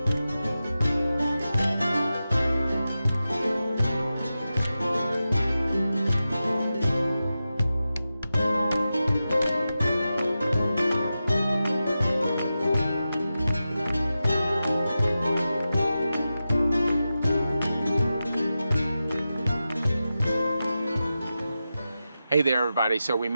Hey there everybody, so we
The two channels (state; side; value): inverted; both; correlation -0.92